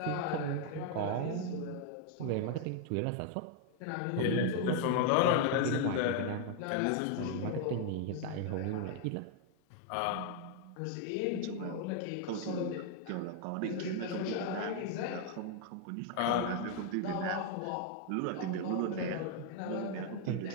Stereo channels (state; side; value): different; both; correlation 0.00